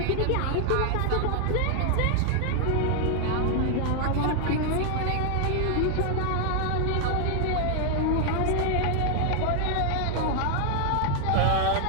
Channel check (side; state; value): both; different; correlation 0.00